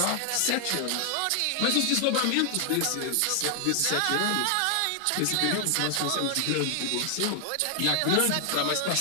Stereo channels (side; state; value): both; different; correlation 0.00